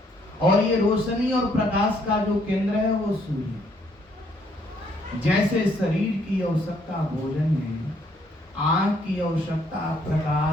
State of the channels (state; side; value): normal; both; correlation 0.68